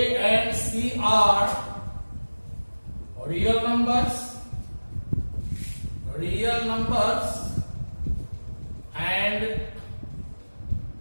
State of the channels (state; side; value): inverted; both; correlation -1.00